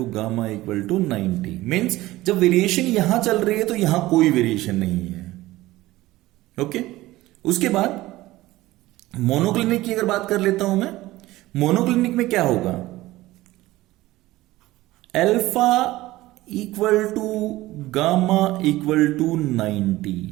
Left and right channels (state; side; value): quieter; left; 17.6 dB